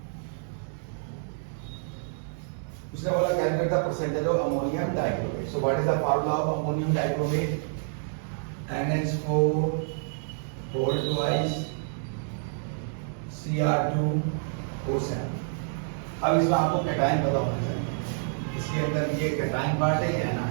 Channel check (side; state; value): left; silent; digital silence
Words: उसने बोला calculate the percentage of ammonium dichromate. So what is the formula of ammonium dichromate? NH4 whole twice Cr2O7। अब इसमें आपको कैटायन पता होना चाहिए, इसके अंदर ये कैटायन पार्ट है या